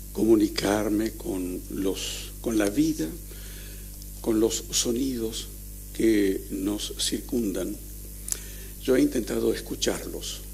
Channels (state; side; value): identical; both; correlation 1.00